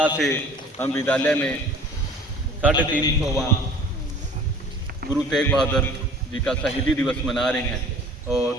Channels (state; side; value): normal; both; correlation 0.48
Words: से हम विद्यालय में 350वां गुरु तेग बहादुर जी का शहीदी दिवस मना रहे हैं और